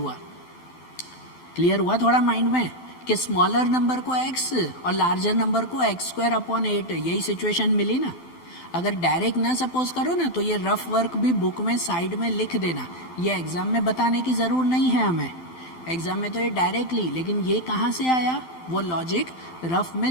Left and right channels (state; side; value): late; right; 12 ms